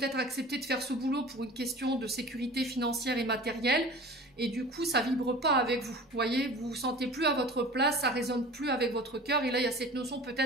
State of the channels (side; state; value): both; normal; correlation 0.40